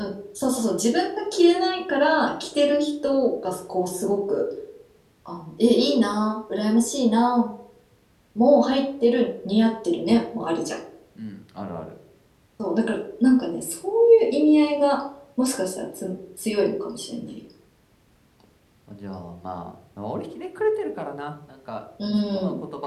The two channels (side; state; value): both; identical; correlation 1.00